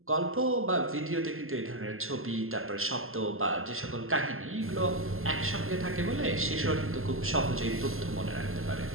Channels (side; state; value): left; late; 0.61 ms